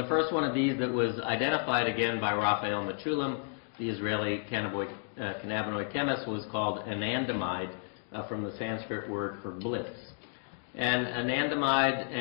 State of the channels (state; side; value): silent; right; 57 dB below the other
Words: first one of these that was identified again by Raphael Mechoulam, the Israeli cannabinoid chemist, was called anandamide, from the Sanskrit word for bliss. And anandamide